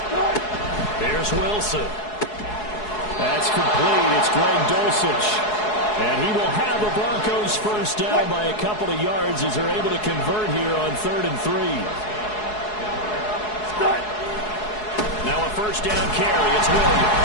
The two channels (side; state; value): right; late; 4.7 ms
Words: Here's Wilson. That's complete. It's Greg Dulcich. And he will have the Broncos first down by a couple of yards as they're able to convert here on 3rd and 3. Now a first down carry. It's